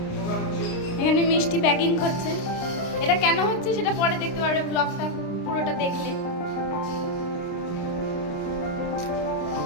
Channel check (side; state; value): right; late; 29 ms